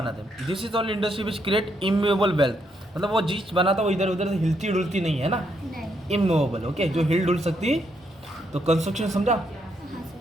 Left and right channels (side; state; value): both; normal; correlation 0.76